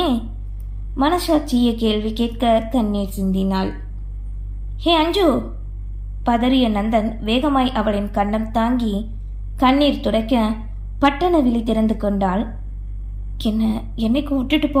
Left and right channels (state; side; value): identical; both; correlation 1.00